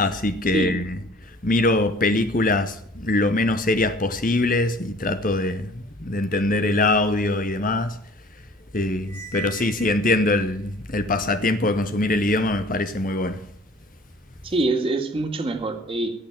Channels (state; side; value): normal; both; correlation 0.50